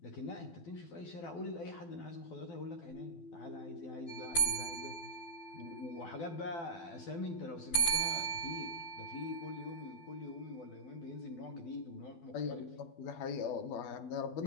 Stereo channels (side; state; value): right; late; 12 ms